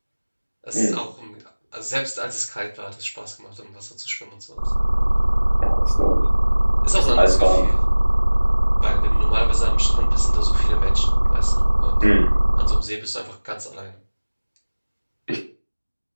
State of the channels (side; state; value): both; inverted; correlation -1.00